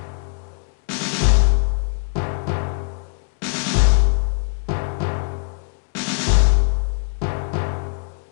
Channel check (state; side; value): silent; right; digital silence